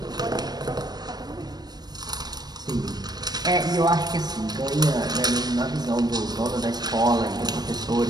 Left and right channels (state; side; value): late; left; 0.19 ms